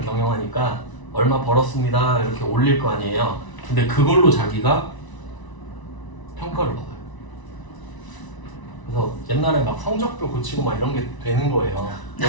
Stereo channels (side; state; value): right; late; 1.0 ms